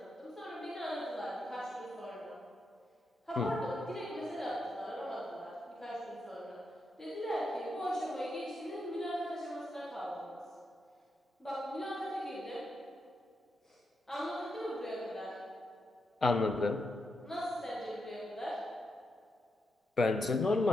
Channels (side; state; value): both; normal; correlation 0.84